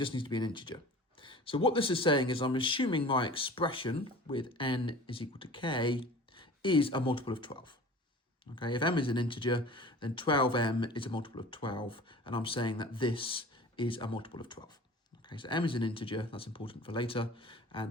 needs to be an integer. So what this is saying is I'm assuming my expression with n is equal to k is a multiple of 12. Okay, if m is an integer, then 12m is a multiple of 12, and I'm saying that this is a multiple of 12. Okay, so m is an integer, that's important for later, and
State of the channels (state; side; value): normal; both; correlation 0.41